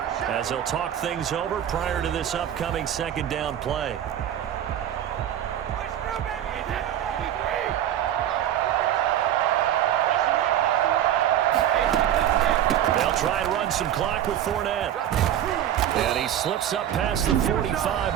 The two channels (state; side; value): quieter; left; 10.9 dB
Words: as they'll talk things over prior to this upcoming 2nd down play. They'll try and run some clock with Fournette. And he slips up past the